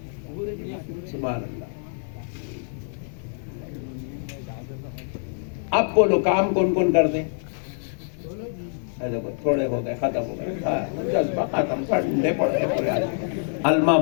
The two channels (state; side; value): silent; right; digital silence